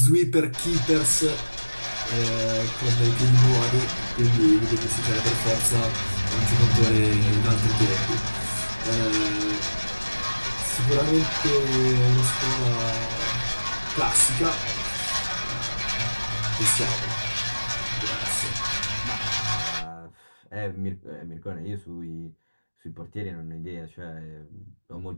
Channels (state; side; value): inverted; both; correlation -1.00